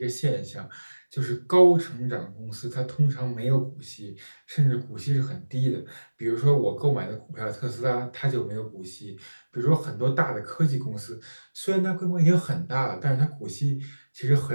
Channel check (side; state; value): both; inverted; correlation -1.00